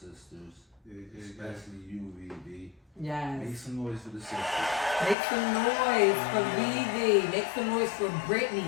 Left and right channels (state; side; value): drops out; right; at 5.2 s